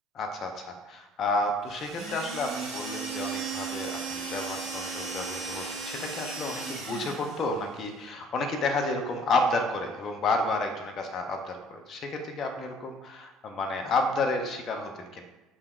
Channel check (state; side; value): normal; both; correlation 0.55